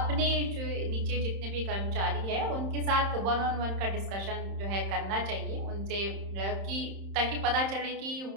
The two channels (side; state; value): left; late; 31 ms